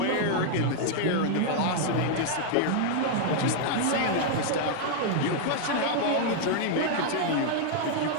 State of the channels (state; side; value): different; both; correlation 0.00